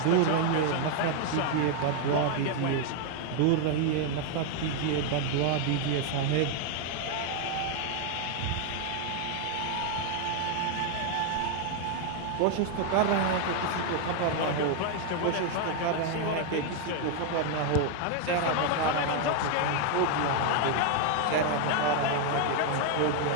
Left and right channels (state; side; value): different; both; correlation 0.00